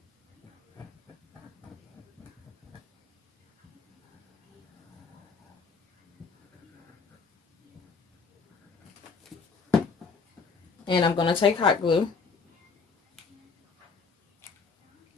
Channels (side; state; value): right; quieter; 5.0 dB